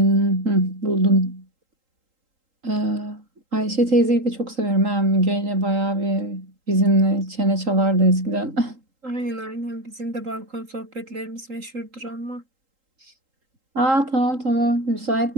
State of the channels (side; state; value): left; late; 3.8 ms